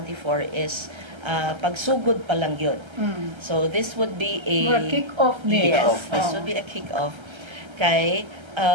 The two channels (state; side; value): late; left; 1.3 ms